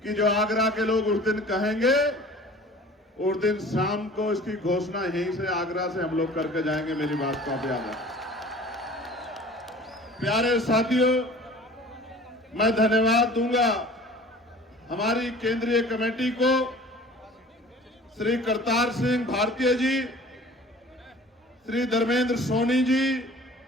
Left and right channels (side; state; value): both; normal; correlation 0.46